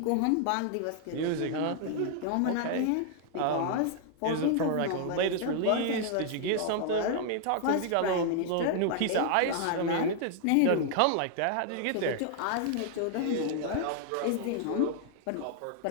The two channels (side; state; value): both; different; correlation 0.00